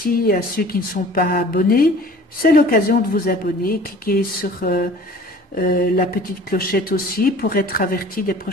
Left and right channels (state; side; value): normal; both; correlation 0.46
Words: à ceux qui ne sont pas abonnés. C'est l'occasion de vous abonner. Cliquez sur la petite clochette aussi pour être averti des